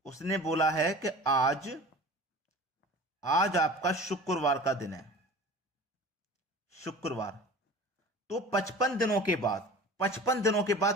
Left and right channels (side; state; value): both; normal; correlation 0.39